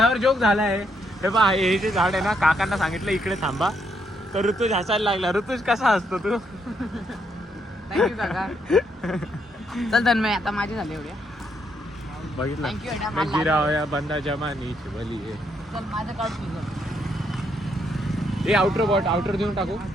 जोक झालाय. हे बा, हे जे झाड आहे ना, काकांना सांगितलं इकडे थांबा, तर ऋतुज हसायला लागला. ऋतुज कसा हसतो तू? थँक्यू काका. चल तन्मय, आता माझे झाले एवढ्या. बघितलं, Thank you, Adam. मैं गिरा होया बंदा जमानीची बली आहे. चल माझं काढ तुझं. ए आउटर देऊन टाकू.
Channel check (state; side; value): normal; both; correlation 0.76